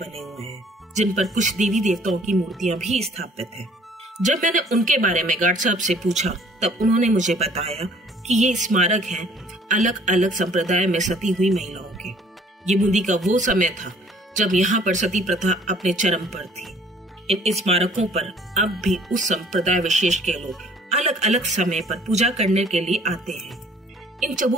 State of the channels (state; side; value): normal; both; correlation 0.56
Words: हुए हैं, जिन पर कुछ देवी देवताओं की मूर्तियां भी स्थापित हैं। जब मैंने उनके बारे में गार्ड साहब से पूछा, तब उन्होंने मुझे बताया कि ये स्मारक हैं अलग अलग संप्रदाय में सती हुई महिलाओं के। ये बूंदी का वो समय था जब यहाँ पर सती प्रथा अपने चरम पर थी। इन स्मारकों पर अब भी उस संप्रदाय विशेष के लोग अलग अलग समय पर पूजा करने के लिए आते हैं। इन